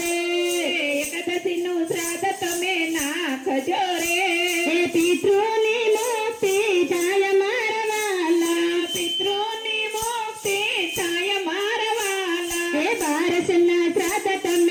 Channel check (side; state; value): both; identical; correlation 1.00